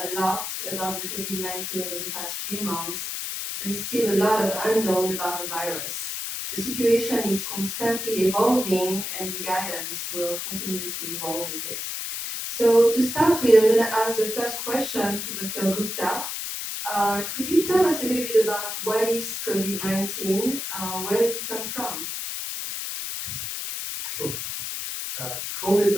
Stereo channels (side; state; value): left; noise; hiss, 4 dB below the sound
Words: lot about the COVID-19 over the past few months, there is still a lot of unknown about the virus. The situation is constantly evolving and the guidance will continue to evolve with it. So to start with, I'm going to ask the first question to Dr. Gupta. Could you tell us a little bit about what is COVID-19? Where did it come from? Sure.